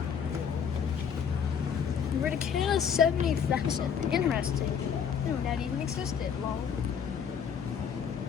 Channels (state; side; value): quieter; right; 7.4 dB